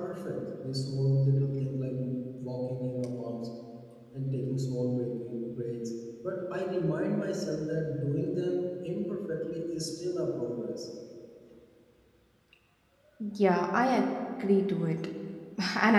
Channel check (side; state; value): both; identical; correlation 1.00